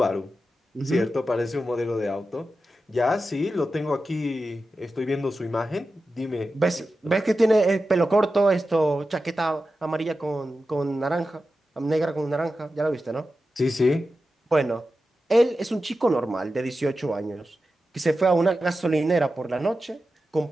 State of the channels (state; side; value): normal; both; correlation 0.92